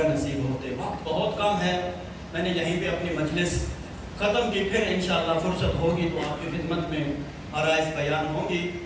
نصیب ہوتے. وقت بہت کم ہے، میں نے یہیں پہ اپنی مجلس ختم کی. پھر انشاءاللہ فرصت ہوگی تو آپ کی خدمت میں عرائض بیان ہوگی.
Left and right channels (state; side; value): identical; both; correlation 1.00